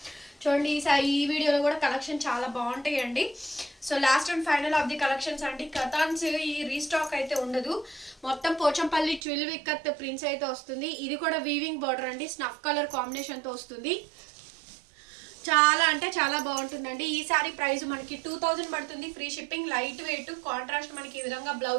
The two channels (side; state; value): left; drops out; at 9.2 s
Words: చూడండి ఈ వీడియోలో కూడా కలెక్షన్ చాలా బాగుంటాయి అండి. So last and final of the collections అండి. కథాన్స్ ఈ రీస్టాక్ అయితే ఉండదు, మొత్తం పోచంపల్లి 12 ఇక్కత్ ప్రింట్స్ అయితే వస్తుంది. ఇది కూడా వీవింగ్ బార్డర్ అండి, స్నఫ్ కలర్ కాంబినేషన్ తో వస్తుంది. చాలా అంటే చాలా బాగుంటుందండి. ఈ సారీ ప్రైస్ మనకి 2000 పడుతుంది, free shipping, light weight, contrast మనకి ఈ విధంగా